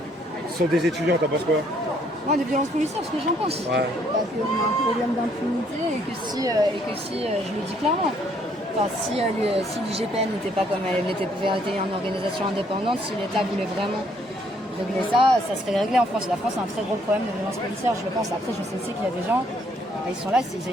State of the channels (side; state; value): both; normal; correlation 0.67